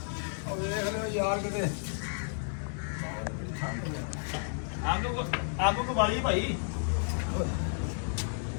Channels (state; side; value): silent; right; digital silence